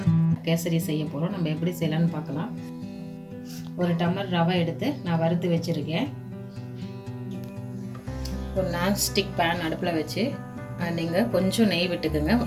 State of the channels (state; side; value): identical; both; correlation 1.00